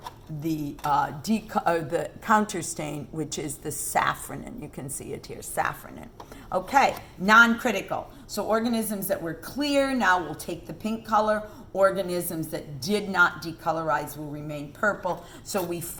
the the counter stain, which is the safranin. You can see it here, safranin. Okay, non-critical. So organisms that were clear now will take the pink color. Organisms that did not decolorize will remain purple. So we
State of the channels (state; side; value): identical; both; correlation 1.00